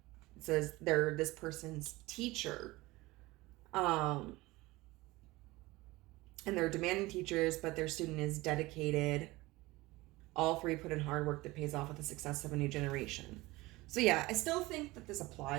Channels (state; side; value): quieter; left; 20.5 dB